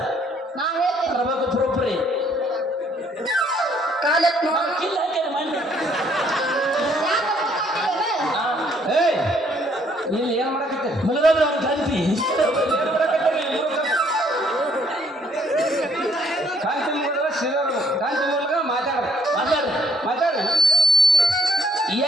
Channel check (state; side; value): normal; both; correlation 0.65